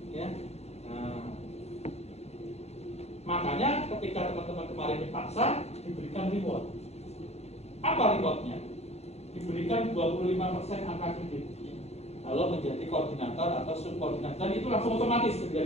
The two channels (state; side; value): late; right; 0.31 ms